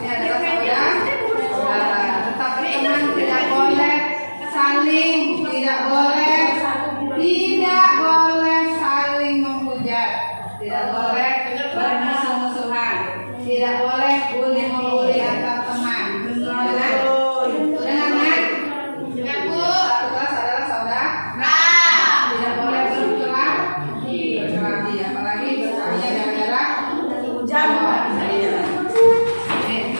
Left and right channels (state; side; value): inverted; both; correlation -1.00